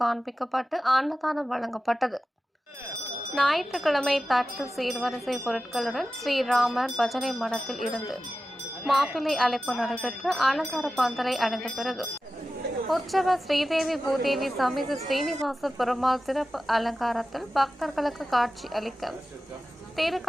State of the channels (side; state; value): both; normal; correlation 0.94